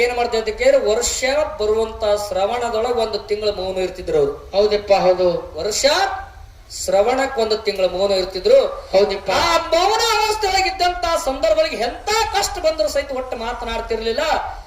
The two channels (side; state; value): both; identical; correlation 1.00